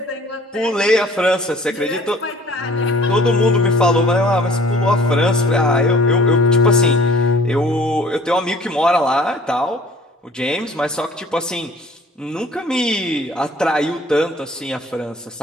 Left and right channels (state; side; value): normal; both; correlation 0.51